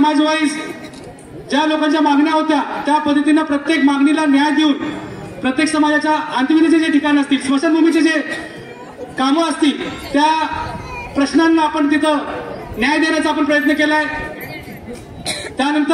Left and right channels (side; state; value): both; identical; correlation 1.00